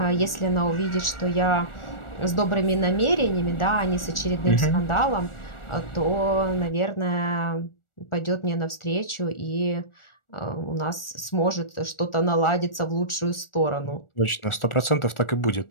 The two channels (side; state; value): right; late; 1.4 ms